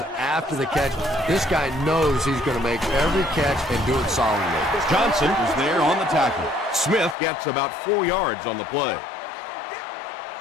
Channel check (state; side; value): drops out; right; at 7.2 s